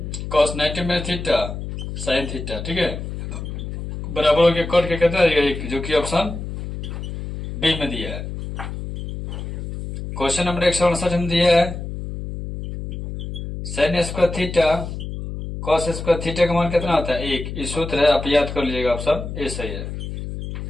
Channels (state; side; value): noise; left; hum, 7 dB below the sound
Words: कॉस 90 में थीटा साइन थीटा। ठीक है, बराबर हो गया कट के कितना देगा 1, जो कि ऑप्शन बी में दिया है। क्वेश्चन नंबर 159 में दिया है sine square theta cos square theta का मान कितना होता है 1, ये सूत्र है, आप याद कर लीजिएगा, ऑप्शन ए सही है।